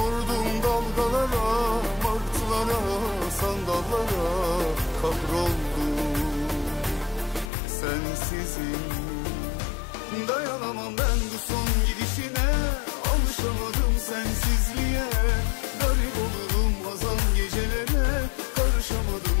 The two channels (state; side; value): drops out; right; at 7.5 s